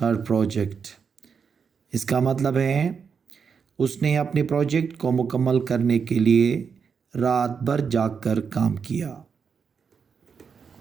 project. इसका मतलब है उसने अपने प्रोजेक्ट को मुकम्मल करने के लिए रात भर जागकर काम किया।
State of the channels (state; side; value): quieter; left; 6.2 dB